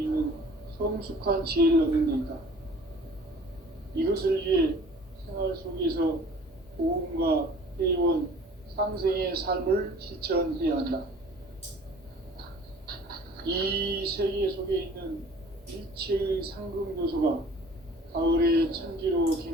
성숙한 지혜를 얻는 데 있다. 이것을 위해 생활 속에서 보험과 회원, 상생의 삶을 실천해야 한다. 이 세계 속에 있는 일체의 상극 요소가 가을의 천지로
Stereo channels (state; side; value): normal; both; correlation 0.49